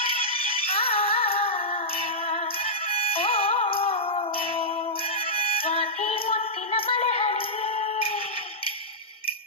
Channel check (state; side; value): normal; both; correlation -0.11